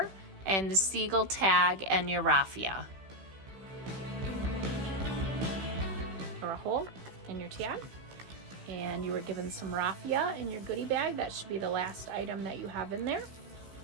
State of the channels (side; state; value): left; late; 16 ms